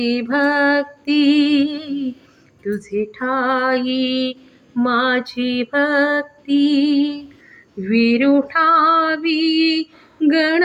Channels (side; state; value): both; identical; correlation 1.00